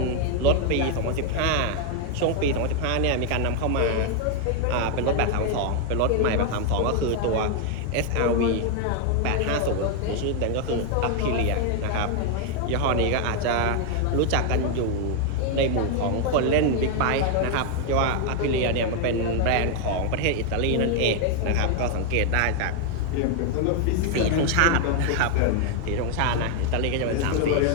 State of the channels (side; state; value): both; different; correlation 0.00